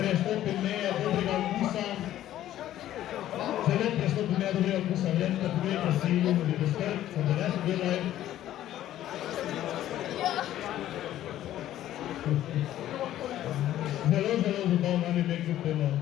meje dobrega okusa. Zelo prestopi meje dobrega okusa, vredno da pogledajte si ljubili dostrt, sem da ne se gledaj. Zelo zabavno anime kljub temu.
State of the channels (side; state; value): right; quieter; 12.8 dB